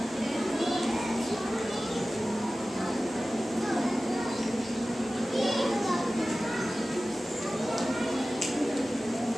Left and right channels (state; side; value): normal; both; correlation 0.96